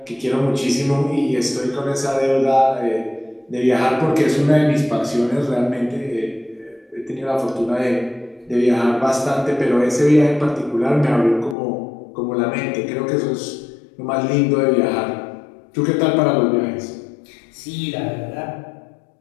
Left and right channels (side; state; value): right; drops out; at 11.6 s